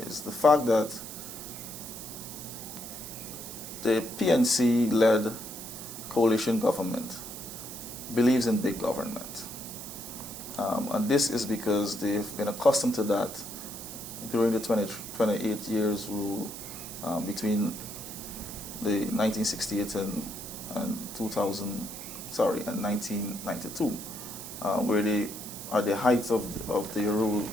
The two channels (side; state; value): right; noise; hiss, 10 dB below the sound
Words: is the fact that the PNC-led coalition government believes in big government. And this is because they've been accustomed to that during the 28 years rule between the 1968 and 1992, where they, at the height of their rule,